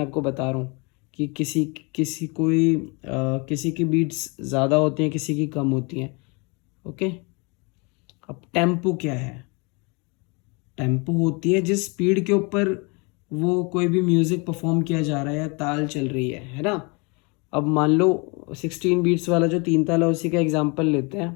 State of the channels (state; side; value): quieter; right; 30.3 dB